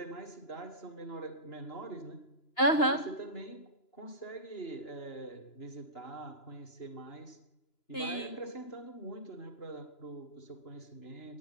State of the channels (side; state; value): right; late; 2.9 ms